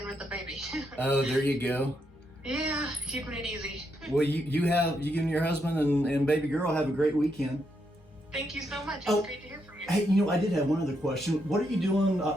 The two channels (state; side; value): normal; both; correlation 0.79